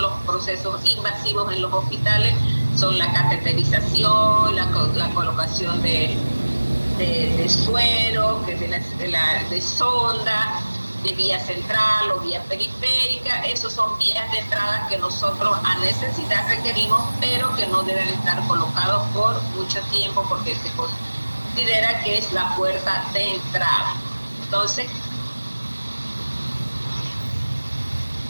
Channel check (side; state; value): both; inverted; correlation -1.00